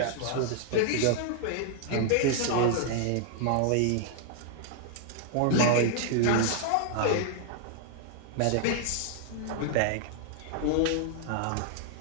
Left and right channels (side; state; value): both; different; correlation 0.00